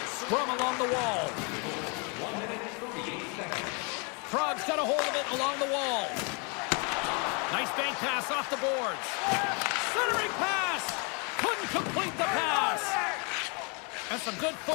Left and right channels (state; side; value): quieter; right; 34.1 dB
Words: Scrum along the wall. Prague's got a hold of it along the wall. Nice bank pass off the boards. Centering pass. Couldn't complete the pass. And some good